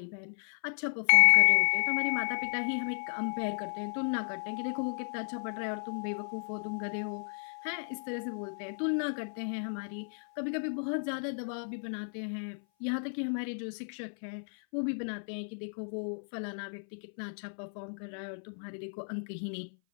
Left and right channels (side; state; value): right; silent; 56 dB below the other